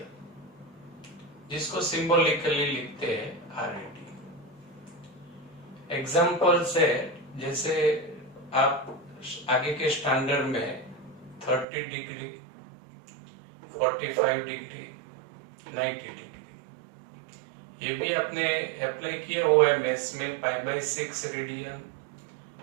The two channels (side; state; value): left; drops out; at 11.7 s